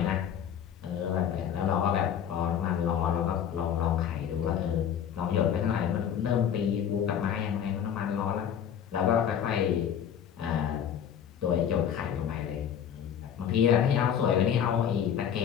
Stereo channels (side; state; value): right; quieter; 8.9 dB